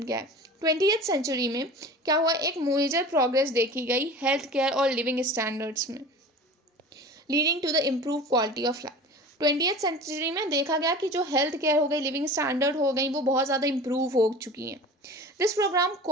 क्या है? 20th सेंचुरी में क्या हुआ, एक मेजर प्रोग्रेस देखी गई हेल्थ केयर और लिविंग स्टैंडर्ड्स में, leading to the improve quality of life. 20th century में देखा गया कि जो हेल्थ केयर हो गई, लिविंग स्टैंडर्ड हो गई, वो बहुत ज़्यादा इम्प्रूव हो चुकी हैं। This programme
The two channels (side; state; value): both; normal; correlation 0.37